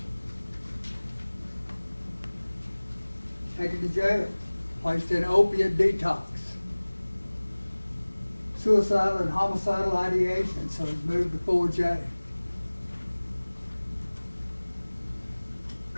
Taken to jail, placed in opiate detox. Suicidal and homicidal ideation, so he's moved to 4J.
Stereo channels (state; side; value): inverted; both; correlation -1.00